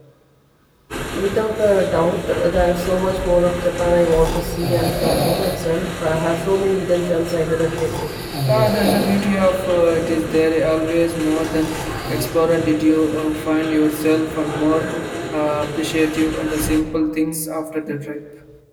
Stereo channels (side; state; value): both; identical; correlation 1.00